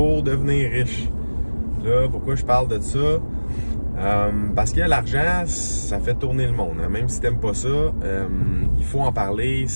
devenir riche. Là, pourquoi je parle de ça? Parce que l'argent, ça fait tourner le monde. Hein. Même si t'aimes pas ça, il faut en parler.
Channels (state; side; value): inverted; both; correlation -1.00